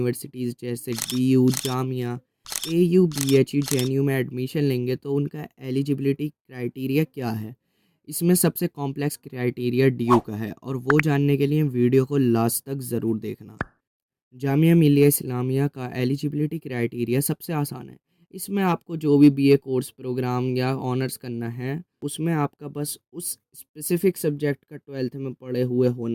जैसे DU, Jamia, AU, BHU, JNU में एडमिशन लेंगे तो उनका एलिजिबिलिटी क्राइटेरिया क्या है। इसमें सबसे कॉम्प्लेक्स क्राइटेरिया डीयू का है और वो जानने के लिए वीडियो को लास्ट तक ज़रूर देखना। जामिया मिलिया इस्लामिया का एलिजिबिलिटी क्राइटेरिया सबसे आसान है। इसमें आपको जो भी बीए कोर्स प्रोग्राम या ऑनर्स करना है उसमें आपका बस उस स्पेसिफिक सब्जेक्ट का 12th में पढ़े हुए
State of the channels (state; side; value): identical; both; correlation 1.00